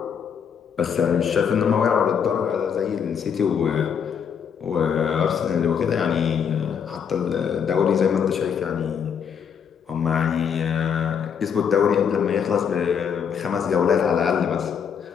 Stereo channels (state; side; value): quieter; right; 7.4 dB